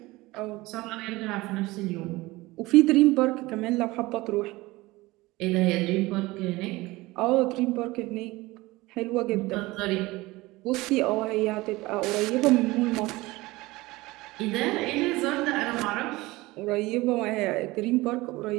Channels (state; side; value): quieter; left; 20.5 dB